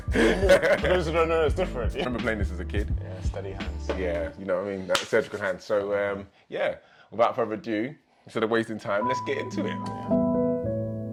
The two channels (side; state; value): both; identical; correlation 1.00